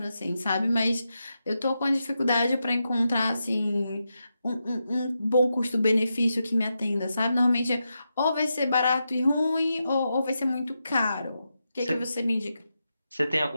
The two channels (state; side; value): inverted; both; correlation -0.87